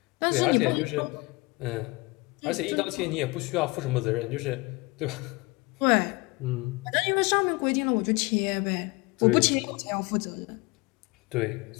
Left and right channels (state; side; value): quieter; right; 25.1 dB